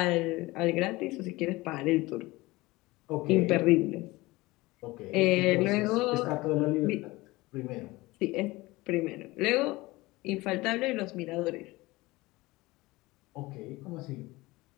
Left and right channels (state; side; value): quieter; right; 20.8 dB